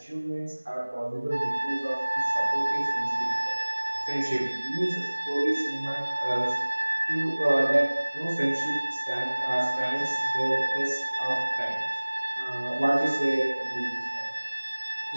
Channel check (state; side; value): inverted; both; correlation -1.00